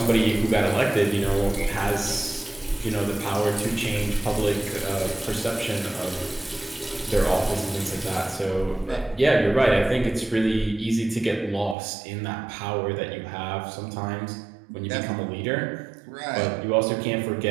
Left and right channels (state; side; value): drops out; left; at 11.8 s